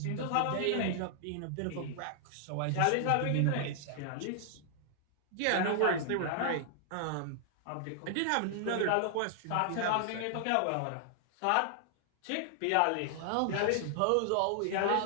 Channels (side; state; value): both; different; correlation 0.00